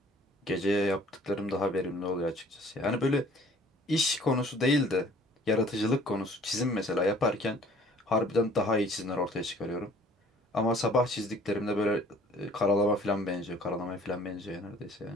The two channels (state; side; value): normal; both; correlation 0.54